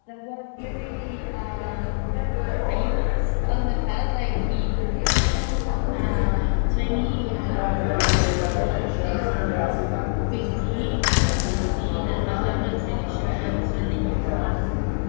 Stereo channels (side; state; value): right; silent; digital silence